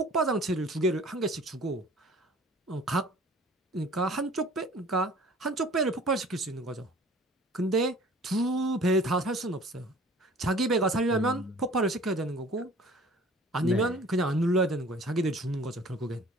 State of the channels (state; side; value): normal; both; correlation 0.48